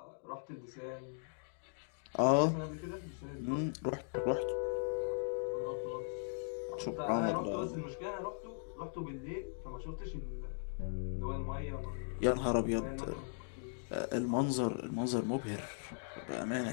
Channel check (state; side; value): silent; right; digital silence